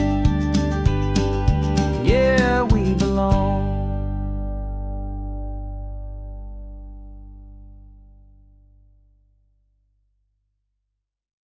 Yeah, we belong.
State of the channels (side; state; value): both; identical; correlation 1.00